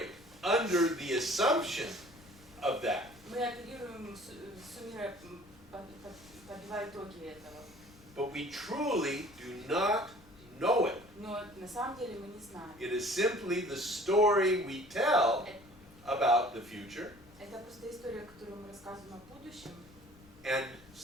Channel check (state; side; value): noise; left; rumble, 24 dB below the sound